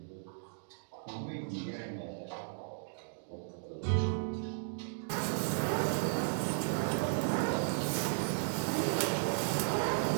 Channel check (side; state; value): left; silent; digital silence